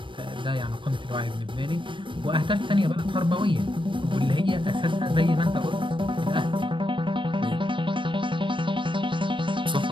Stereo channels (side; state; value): left; late; 0.24 ms